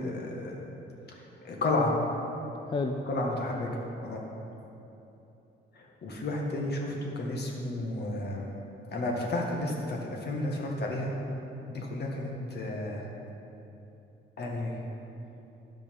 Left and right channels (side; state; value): both; normal; correlation 0.46